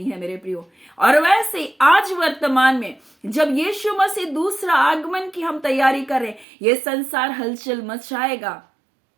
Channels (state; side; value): drops out; left; at 6.5 s